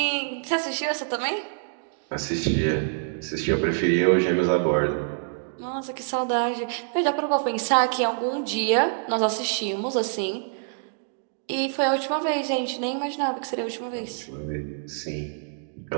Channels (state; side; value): silent; left; digital silence